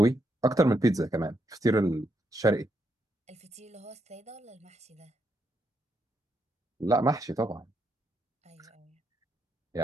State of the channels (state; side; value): normal; both; correlation 0.79